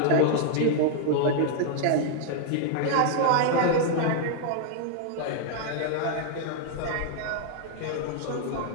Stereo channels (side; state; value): both; different; correlation 0.00